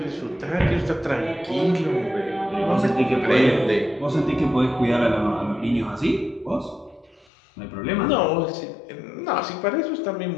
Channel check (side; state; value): right; drops out; at 7.2 s